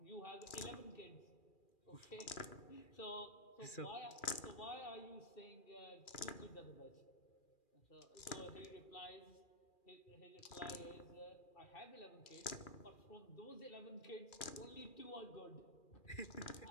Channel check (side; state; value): right; late; 2.4 ms